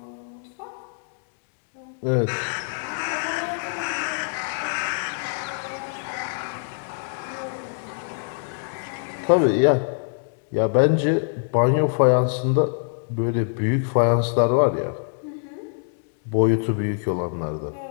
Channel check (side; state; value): right; silent; digital silence